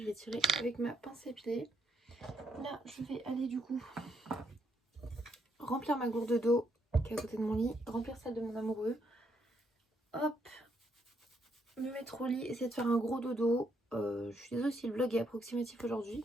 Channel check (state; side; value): normal; both; correlation 0.75